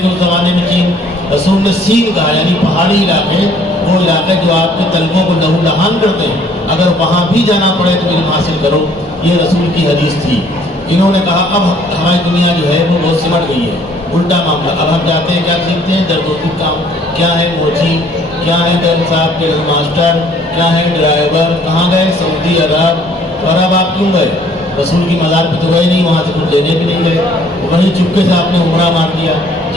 گے اس زمانے میں چین؟ رسول نے سین کہا، یعنی پہاڑی علاقے، وہ علاقے جو آپ کے طلبوں کو لہو لہان کرتے ہیں، اگر وہاں بھی جانا پڑے تو علم حاصل کرو۔ یہ رسول کی حدیث تھی۔ انہوں نے کہا اب ہماری دنیا جو ہے وہ بہت سمٹ گئی ہے، الٹا معاملہ۔ اب ہم جاتے ہیں، کیا سیکھتے ہیں؟ درد و دکھ کام، کیا ہے موچی، کیا ہے گرم صاحب کے ماسٹر، کیا ہے ڈرائیور، کہاں گئے؟ سعودی عرب۔ اور اب آپ کیوں گئے؟ رسول کی مزار پہ تو گئے نہیں، وہاں سے کچھ لینے بھی نہیں گئے، وہیں چپکے سے آپ نے عمرہ مار دیا۔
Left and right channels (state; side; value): normal; both; correlation 0.60